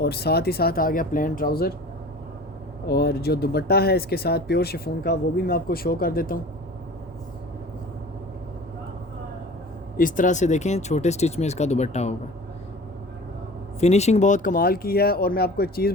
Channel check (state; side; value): normal; both; correlation 0.42